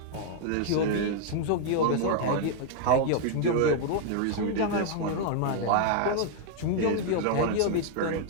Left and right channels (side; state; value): both; different; correlation -0.01